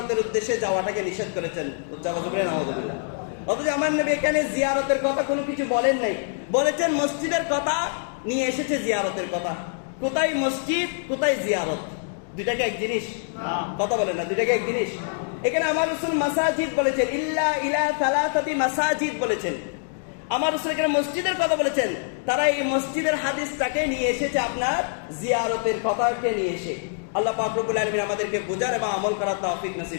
উদ্দেশ্যে যাওয়াটাকে নিষেধ করেছেন। নাউযুবিল্লাহ। অথচ আমার নবী এখানে জিয়ারতের কথা কোনো কিছু বলেন নাই, বলেছেন মসজিদের কথা, নিয়ে এসেছে জিয়ারতের কথা। কোথায় মসজিদ, কোথায় জিয়ারত? দুইটাকে এক জিনিস? কথা বলেন না, দুইটাকে এক জিনিস। এখানে আমার রাসূল মাসাজিদ বলেছেন, ইল্লা ইলা সালাসাতি মাসাজিদ বলেছেন। আমার রাসূল এখানে মসজিদের কথা বলেছেন, তারা এই মসজিদের হাদিসটাকে নিয়ে এসেছে আপনার জিয়ারতের কথাকে নিয়ে এসে। আল্লাহ পাক রব্বুল আলামিন আমাদেরকে বুঝার এবং আমল করার তৌফিক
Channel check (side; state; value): right; silent; digital silence